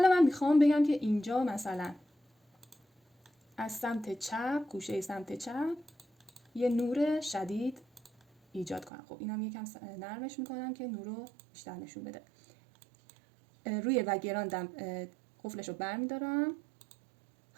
من میخوام بگم که اینجا مثلا از سمت چپ، گوشه سمت چپ یه نور شدید ایجاد کنم. خب اینم یکم نرمش میکنم که نور رو بیشتر نشون بده. روی بک‌گراندم قفلش رو برمیدارم.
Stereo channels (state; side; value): drops out; left; at 8.9 s